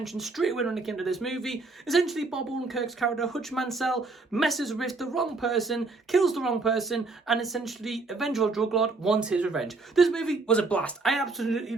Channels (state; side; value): quieter; left; 3.7 dB